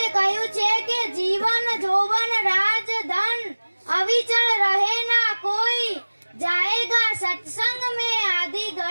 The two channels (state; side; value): inverted; both; correlation -1.00